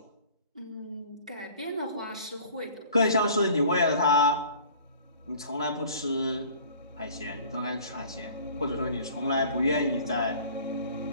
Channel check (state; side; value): inverted; both; correlation -0.49